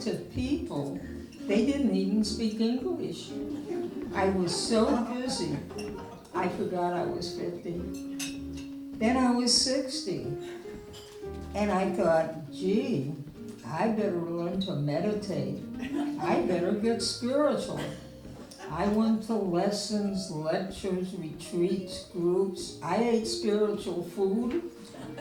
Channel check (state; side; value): identical; both; correlation 1.00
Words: people. They didn't even speak English. I was so busy, I forgot I was 50. Then I was 60. And I thought, gee, I better learn to meditate. I better get spiritual. I went to lessons, lectures, retreats, groups. I ate spiritual food.